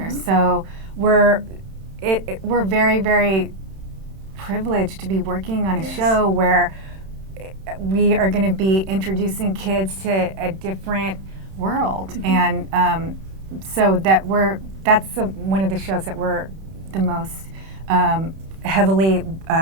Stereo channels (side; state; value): left; late; 31 ms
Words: So we're very, very privileged to be working on a show where we are going to be introducing kids to a different world, and so that's one of the shows that we're the most heavily